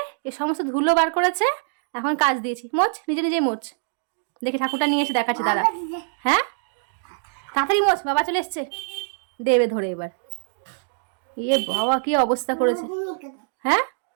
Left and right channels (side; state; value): left; silent; digital silence